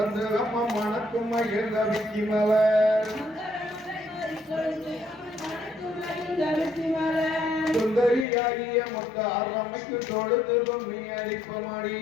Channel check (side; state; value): right; drops out; at 8.2 s